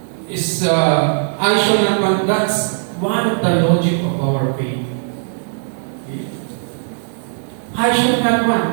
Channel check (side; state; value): left; silent; digital silence